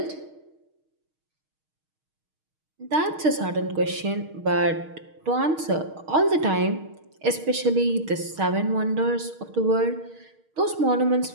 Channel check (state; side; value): late; left; 6.4 ms